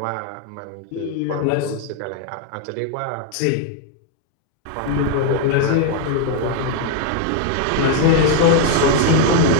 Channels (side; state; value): both; different; correlation 0.00